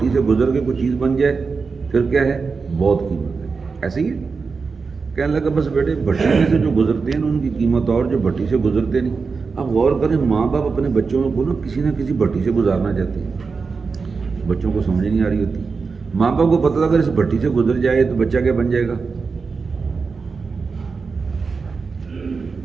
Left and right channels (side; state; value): left; quieter; 4.8 dB